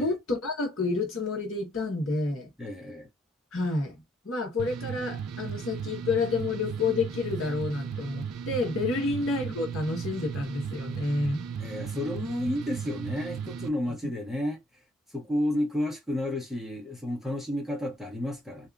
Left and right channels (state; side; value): normal; both; correlation 0.65